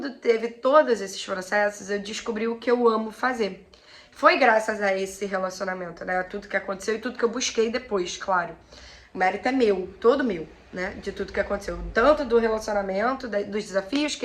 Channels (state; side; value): identical; both; correlation 1.00